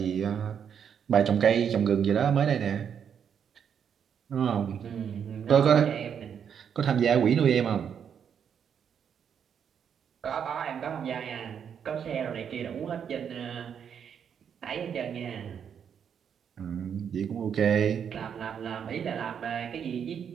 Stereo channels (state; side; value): quieter; left; 7.9 dB